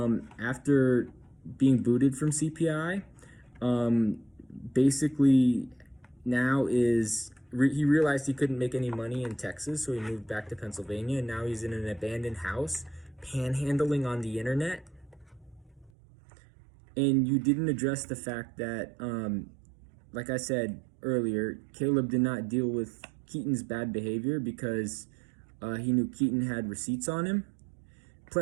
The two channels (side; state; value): left; drops out; at 15.9 s